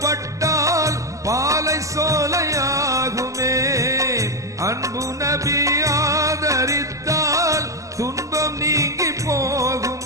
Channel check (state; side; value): late; left; 0.16 ms